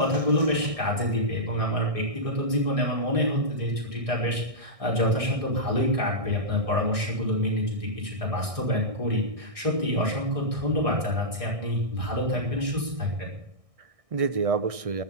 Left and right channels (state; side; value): late; left; 1.6 ms